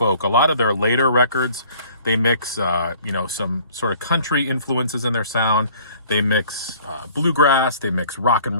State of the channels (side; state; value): both; inverted; correlation -0.53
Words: A lot of their later records, they mix, you know, some sort of country influences in their sound. They mix bluegrass, they mix rock